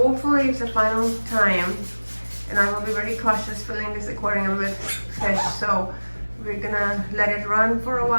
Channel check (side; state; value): both; inverted; correlation -1.00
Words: it's the final time, and I will be very cautious filling this aquarium with fish. So we're gonna let it run for a